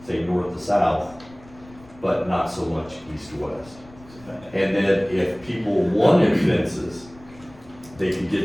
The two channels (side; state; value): left; noise; rumble, 23 dB below the sound